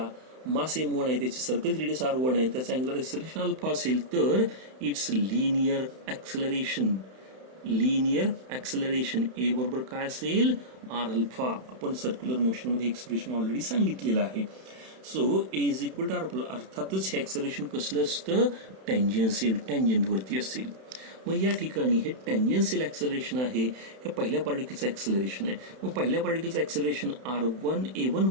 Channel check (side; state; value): left; late; 31 ms